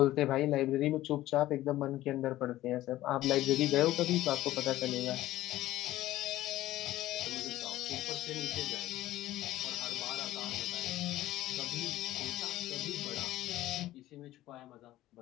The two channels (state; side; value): quieter; right; 15.3 dB